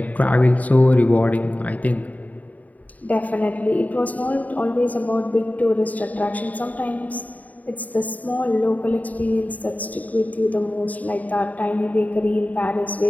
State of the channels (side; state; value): right; late; 0.073 ms